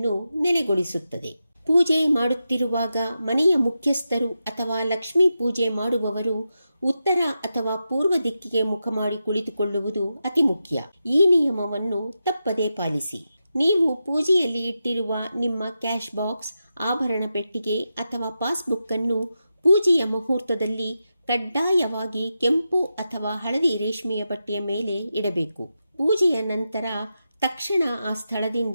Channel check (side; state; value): both; inverted; correlation -0.89